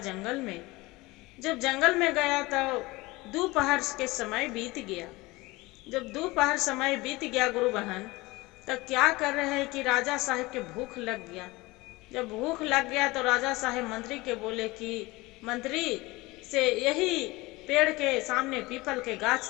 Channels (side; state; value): right; quieter; 21.7 dB